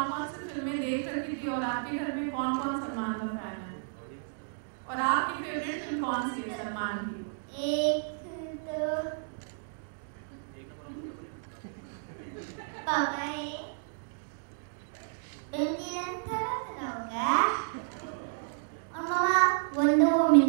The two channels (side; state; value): left; silent; digital silence